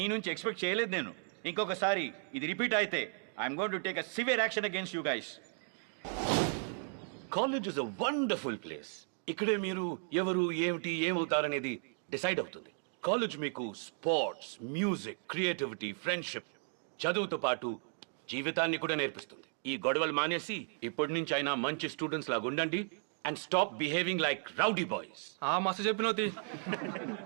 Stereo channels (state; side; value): silent; left; 54 dB below the other